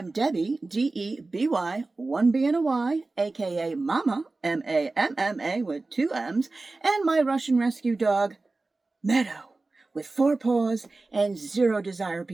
Debbie, D-E-B-Y, one B and a Y, aka Mama, M-A-M-M-A with two M's, and my Russian rescue dog, Meadow, with 4 paws and 0 desire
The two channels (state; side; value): quieter; left; 3.4 dB